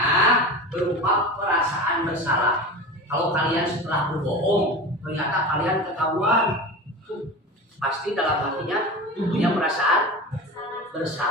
berupa perasaan bersalah. Kalau kalian setelah berbohong ternyata kalian ketahuan, pasti dalam hatinya punya perasaan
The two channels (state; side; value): normal; both; correlation 0.30